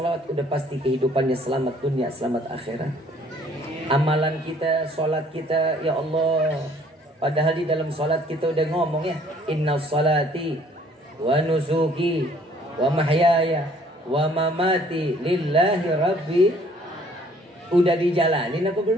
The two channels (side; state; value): both; normal; correlation 0.59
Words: udah pasti kehidupannya selamat dunia, selamat akhirat. Amalan kita, sholat kita, ya Allah. Padahal di dalam sholat kita udah ngomong ya, inna sholati wa nusuki wa mahyaya wa mamati lillahi rabbi. Udah dijalanin apa